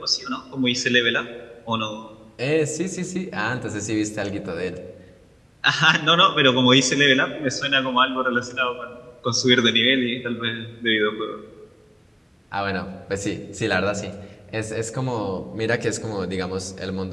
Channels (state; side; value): identical; both; correlation 1.00